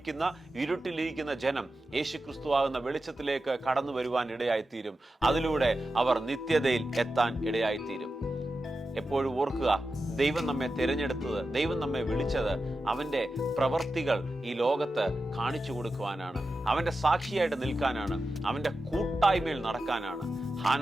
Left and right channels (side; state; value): both; normal; correlation 0.91